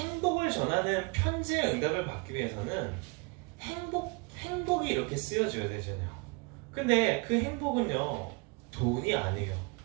전하는 편지의 응답을 받기 위해서는 행복이 이렇게 쓰여져야 되잖아요. 근데 그 행복은요 돈이 아니에요.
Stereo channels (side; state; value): left; quieter; 28.8 dB